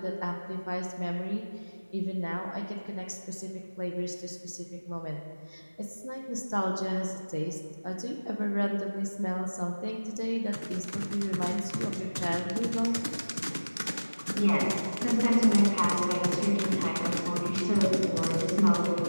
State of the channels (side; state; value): both; inverted; correlation -1.00